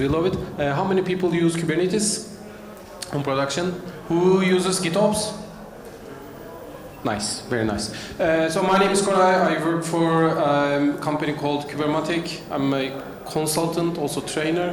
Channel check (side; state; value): both; identical; correlation 1.00